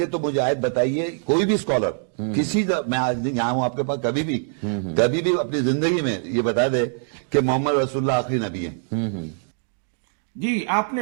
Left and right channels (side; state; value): left; silent; digital silence